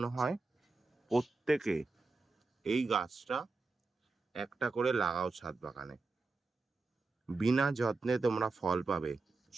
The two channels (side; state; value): left; quieter; 3.8 dB